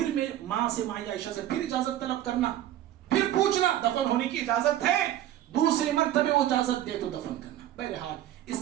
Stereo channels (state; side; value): quieter; left; 12.6 dB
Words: میں ماں سے، ماں عائشہ سے پھر اجازت طلب کرنا، پھر پوچھنا دفن ہونے کی اجازت ہے، دوسری مرتبہ وہ اجازت دے تو دفن کرنا. بہرحال